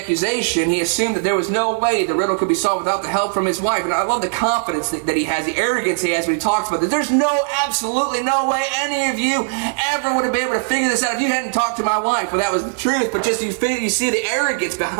he assumed that there was no way the riddle could be solved without the help from his wife. And I love the confidence that he has, the arrogance he has when he talks about this. There's absolutely no way any of you ever would have been able to figure this out if you hadn't talked to my wife. Well, that was the truth, but just you see the arrogance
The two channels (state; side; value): silent; left; 60 dB below the other